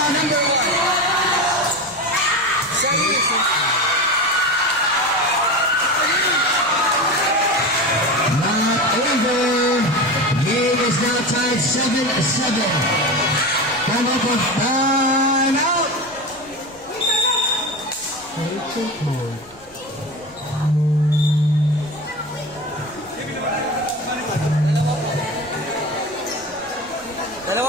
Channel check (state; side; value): noise; left; rumble, 26 dB below the sound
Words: Is now tied 7-7. Come up with time out.